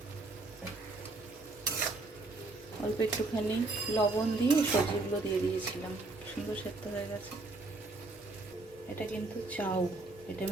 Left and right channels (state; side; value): quieter; left; 3.2 dB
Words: অল্প একটুখানি লবণ দিয়ে সবজিগুলো দিয়ে দিয়েছিলাম, সুন্দর সেদ্ধ হয়ে গেছে। এটা কিন্তু চাউ, এটা